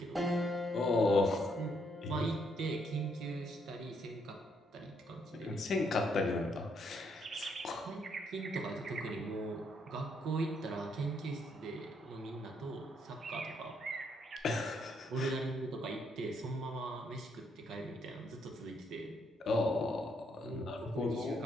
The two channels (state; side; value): normal; both; correlation 0.74